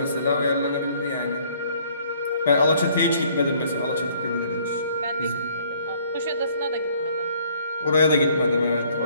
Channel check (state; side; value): inverted; both; correlation -0.61